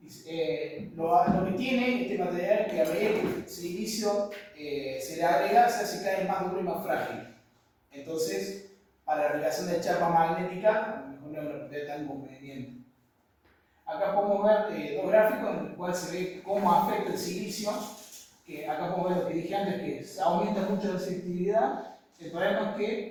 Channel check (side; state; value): both; identical; correlation 1.00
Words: Lo que tiene este material es que a medida que el silicio se le agrega, se hace cada vez más duro y más frágil. Entonces, para la aplicación de chapa magnética, a lo mejor no es una propiedad tan conveniente. Acá podemos ver dos gráficos en los cuales se ve cómo afecta el silicio. Que acá podemos ver lo que dije antes, que se aumenta mucho la selectividad. El problema es